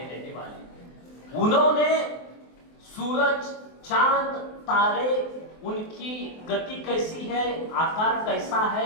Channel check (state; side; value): late; right; 24 ms